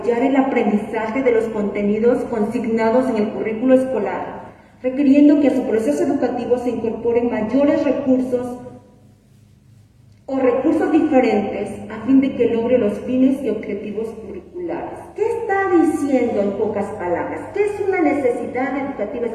el aprendizaje de los contenidos consignados en el currículo escolar, requiriendo que a su proceso educativo se incorporen mayores recursos o recursos diferentes a fin de que logre los fines y objetivos curriculares. ¿Qué está diciendo en pocas palabras? ¿Qué es una necesidad educativa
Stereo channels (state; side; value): identical; both; correlation 1.00